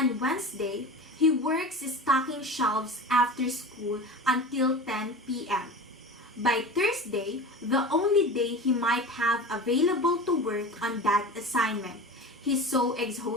Wednesday, he works stocking shelves after school until 10 p.m. By Thursday, the only day he might have available to work on that assignment, he's so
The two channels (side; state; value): both; normal; correlation 0.32